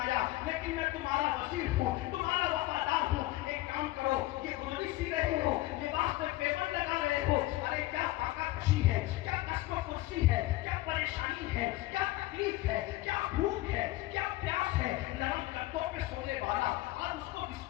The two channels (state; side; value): quieter; right; 17.8 dB